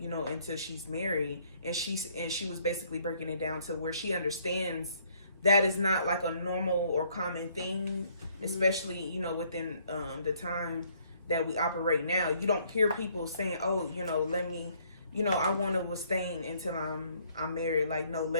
know, until she's married. And she was basically breaking it down to where she understands that is not like a normal or common thing, especially, you know, within the time that we operate now. You don't hear people saying, oh, you know, I want to abstain until I'm married. Like, no,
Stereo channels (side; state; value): both; inverted; correlation -0.65